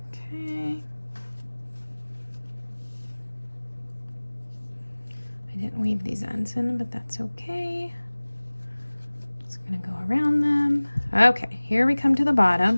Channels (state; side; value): inverted; both; correlation -1.00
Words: Okay. I didn't weave these ends in, but that's okay. Just gonna go around them. Okay, here we come to the